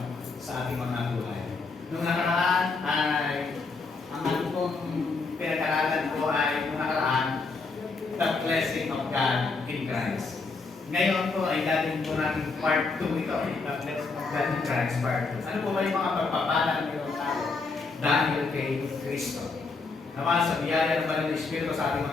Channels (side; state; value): right; quieter; 4.2 dB